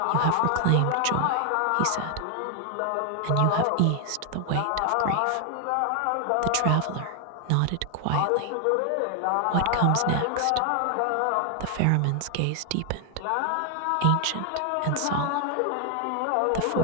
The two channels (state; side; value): different; both; correlation 0.00